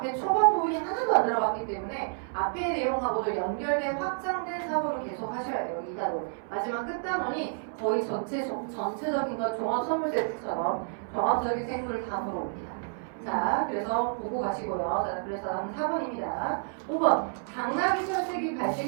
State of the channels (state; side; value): silent; left; 58 dB below the other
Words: 초반 부분이 하나도 안 들어갔기 때문에 앞의 내용하고도 연결된 확장된 사고를 계속 하셔야 돼요. 이 단원. 마지막 끝단원이 거의 전체적인 건 종합선물 세트처럼 종합적인 생물을 다 물어옵니다. 자, 그래서 보고 가시고요. 자, 그래서 다음 4번입니다. 5번. 당나귀 혈색이